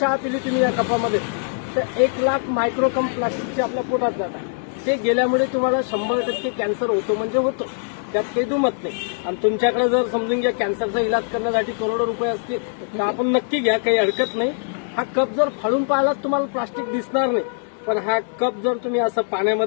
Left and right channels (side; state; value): right; silent; digital silence